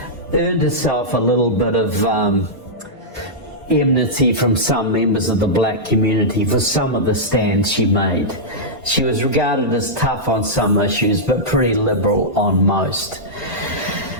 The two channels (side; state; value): both; normal; correlation -0.11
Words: earned herself a little bit of enmity from some members of the black community for some of the stands she made. She was regarded as tough on some issues, but pretty liberal on most.